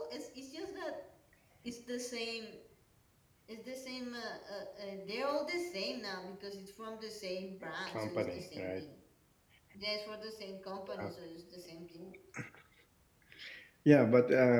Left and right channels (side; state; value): both; identical; correlation 1.00